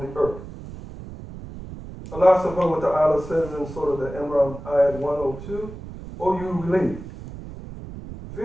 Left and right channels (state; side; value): noise; right; rumble, 12 dB below the sound